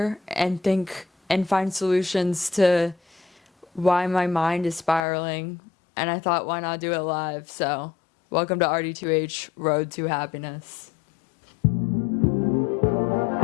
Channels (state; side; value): drops out; right; at 5.0 s